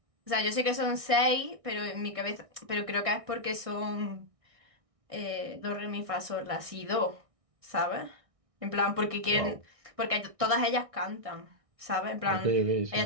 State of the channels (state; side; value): late; left; 1.6 ms